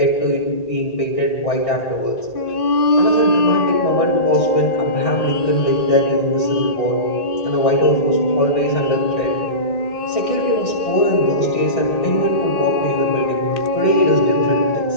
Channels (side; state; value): right; late; 1.8 ms